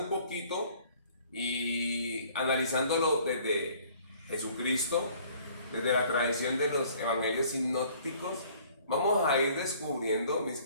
poquito y analizándolo desde Jesucristo, desde la tradición de los evangelios sinópticos, vamos a ir descubriendo, mis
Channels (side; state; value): both; inverted; correlation -0.56